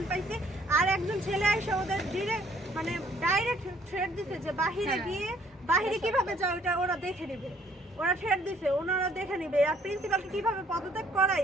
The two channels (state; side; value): normal; both; correlation 0.63